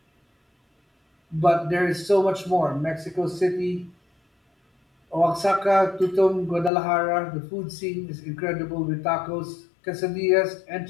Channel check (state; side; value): drops out; right; at 6.7 s